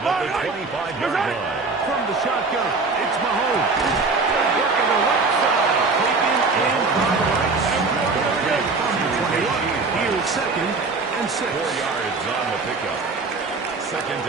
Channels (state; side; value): quieter; left; 4.0 dB